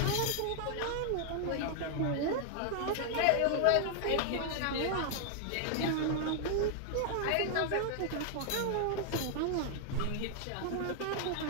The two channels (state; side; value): different; both; correlation 0.00